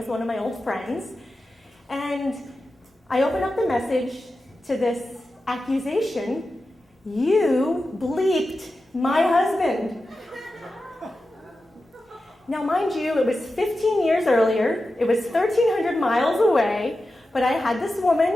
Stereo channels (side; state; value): both; normal; correlation 0.92